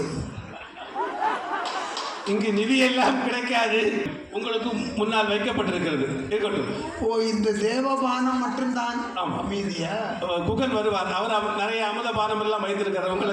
இங்கு நிதி எல்லாம் கிடைக்காது, உங்களுக்கு முன்னால் வைக்கப்பட்டிருக்கிறது. இருக்கட்டும். ஓ, இந்த தேவபானம் மட்டும்தான். ஆமாம். மீதியா குகன் வருவார், அவர் நிறைய அமுதபானம் எல்லாம் வைத்திருக்கிறார்.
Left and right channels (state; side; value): identical; both; correlation 1.00